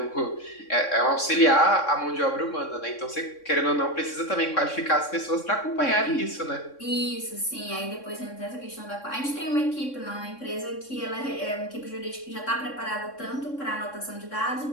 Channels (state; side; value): late; right; 3.6 ms